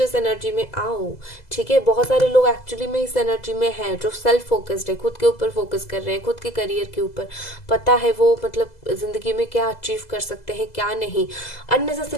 एनर्जी में आओ, ठीक है। बहुत सारे लोग एक्चुअली में इस एनर्जी में हैं जो सेल्फ फोकस्ड है, खुद के ऊपर फोकस कर रहे हैं, खुद के करियर के ऊपर, पता है वो मतलब जिंदगी में क्या अचीव कर सकते हैं क्या नहीं।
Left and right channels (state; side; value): late; right; 2.0 ms